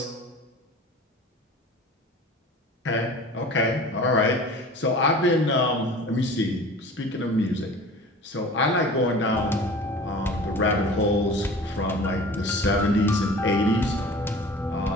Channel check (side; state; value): both; normal; correlation 0.41